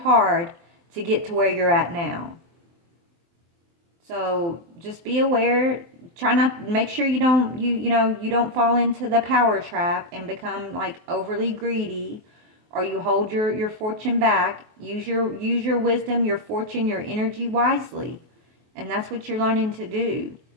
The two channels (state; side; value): late; left; 23 ms